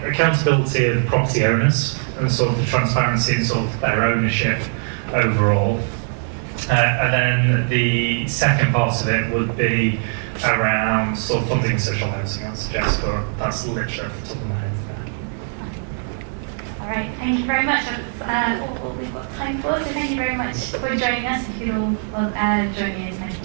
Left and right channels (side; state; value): left; silent; 61 dB below the other